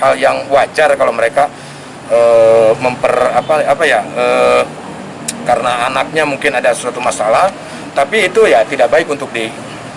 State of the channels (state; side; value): identical; both; correlation 1.00